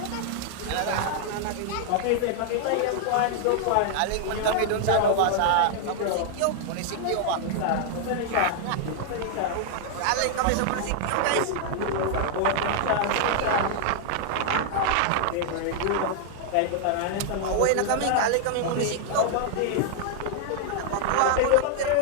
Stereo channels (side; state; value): both; different; correlation -0.01